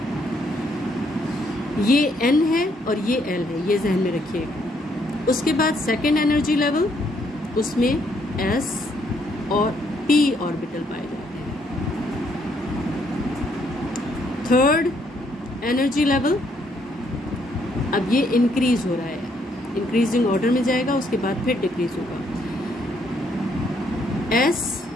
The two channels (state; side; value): normal; both; correlation 0.71